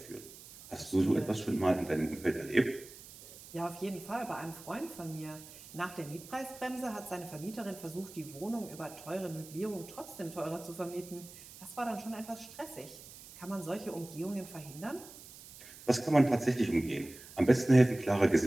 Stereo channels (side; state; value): right; noise; hiss, 17 dB below the sound